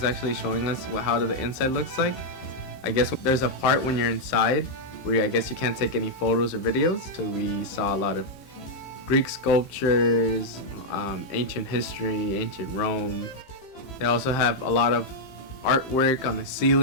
actually showing us how the inside looks like. I guess there's a part when you're inside where I guess you can't take any photos or videos. So we saw a lot of Greek sculptures, ancient history, ancient Rome. They also have a lot of artwork on the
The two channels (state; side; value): late; right; 15 ms